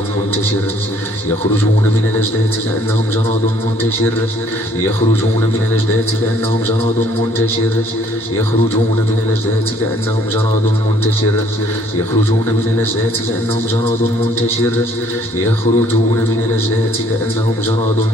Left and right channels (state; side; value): normal; both; correlation 0.61